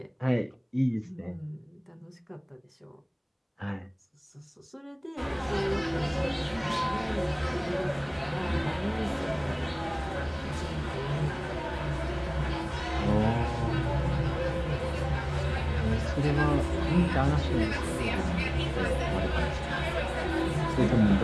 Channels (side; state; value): both; identical; correlation 1.00